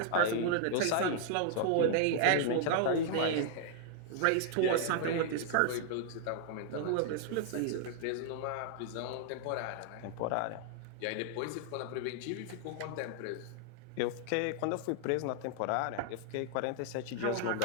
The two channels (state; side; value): different; both; correlation 0.00